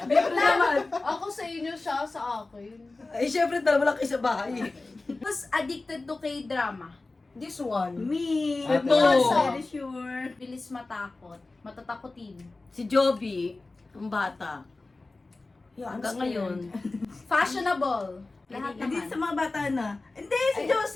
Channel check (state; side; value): quieter; right; 3.3 dB